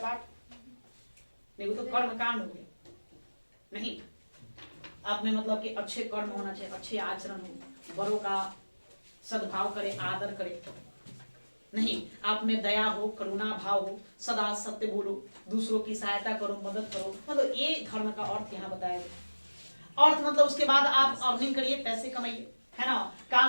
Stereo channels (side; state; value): both; inverted; correlation -1.00